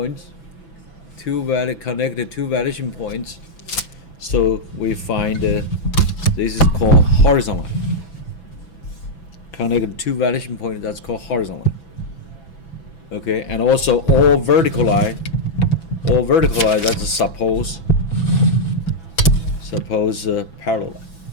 Connect the two vanishing points. So we find this is called horizontal line. Connect the two vanishing points, that's called horizontal line. Okay, and also all vertical line, that's a suppose parallel line.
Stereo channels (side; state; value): right; late; 6.0 ms